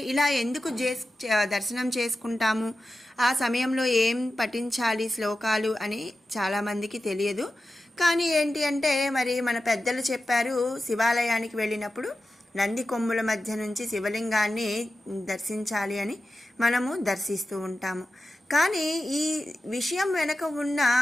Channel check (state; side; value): normal; both; correlation 0.92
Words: ఇలా ఎందుకు దర్శనం చేసుకుంటాము, ఆ సమయంలో ఏం పఠించాలి శ్లోకాలు అని చాలామందికి తెలియదు. కానీ ఏంటి అంటే మరి మన పెద్దలు చెప్పారు, శివాలయానికి వెళ్ళినప్పుడు నంది కొమ్ముల మధ్య నుంచి శివలింగాన్ని దర్శించాలి అని మనము దర్శిస్తూ ఉంటాము. కానీ ఈ విషయం వెనక ఉన్న